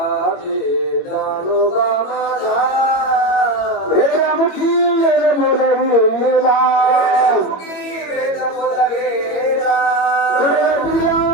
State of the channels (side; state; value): right; late; 21 ms